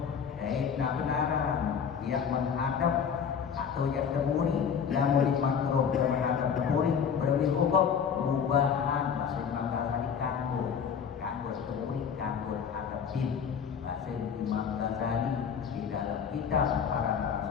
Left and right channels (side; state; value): right; quieter; 7.1 dB